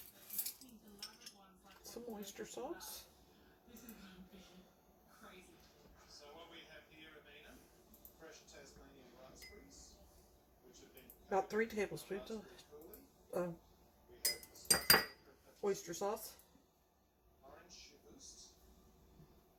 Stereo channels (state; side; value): identical; both; correlation 1.00